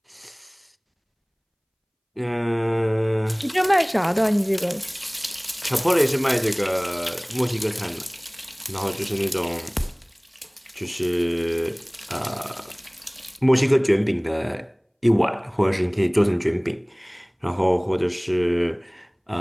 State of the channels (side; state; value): both; identical; correlation 1.00